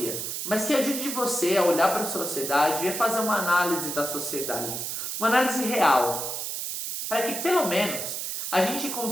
mas que ajude você a olhar para a sociedade e a fazer uma análise da sociedade, uma análise real, para que pelo menos a gente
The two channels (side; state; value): right; noise; hiss, 4 dB below the sound